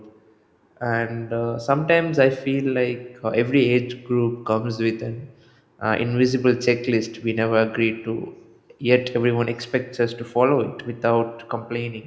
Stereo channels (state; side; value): identical; both; correlation 1.00